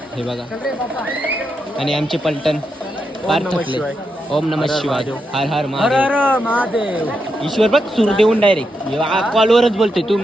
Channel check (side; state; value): both; normal; correlation 0.84